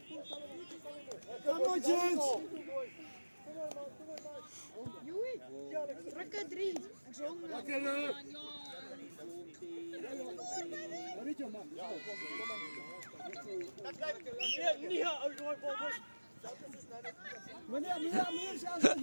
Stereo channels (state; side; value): inverted; both; correlation -1.00